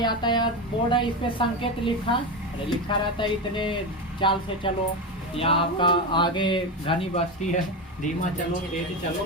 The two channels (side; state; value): both; normal; correlation 0.17